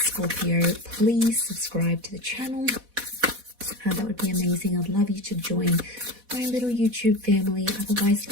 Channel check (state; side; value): late; left; 4.1 ms